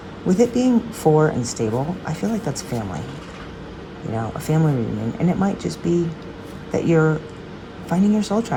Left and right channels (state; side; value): identical; both; correlation 1.00